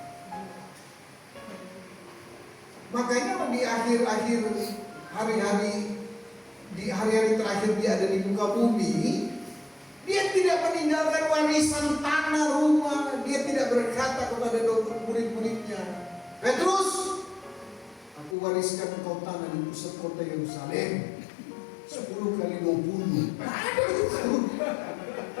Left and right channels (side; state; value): right; drops out; at 18.4 s